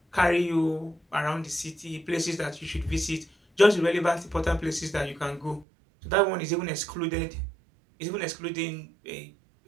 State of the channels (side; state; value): left; drops out; at 5.7 s